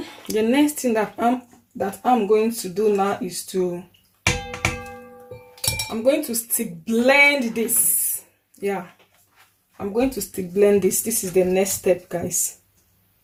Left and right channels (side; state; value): both; identical; correlation 1.00